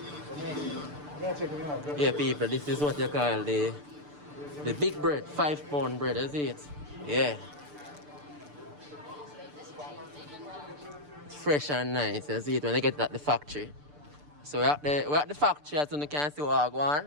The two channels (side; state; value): left; late; 6.8 ms